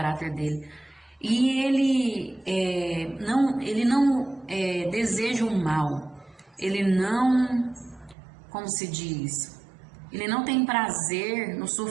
dele. E Ele não deseja o mal. Ele não, como se diz, Ele não tem prazer no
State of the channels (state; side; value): drops out; left; at 8.2 s